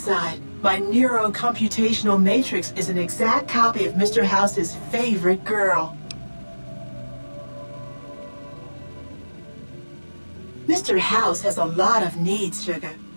my neurocomputational matrix is an exact copy of Mr. House's favorite girl. Mr. House has a lot of needs, Sugar.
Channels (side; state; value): both; inverted; correlation -1.00